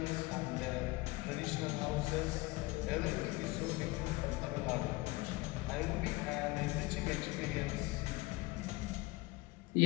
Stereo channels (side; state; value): right; quieter; 22.0 dB